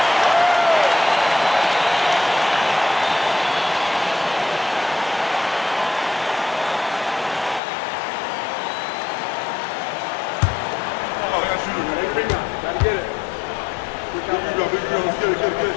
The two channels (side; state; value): right; drops out; at 7.6 s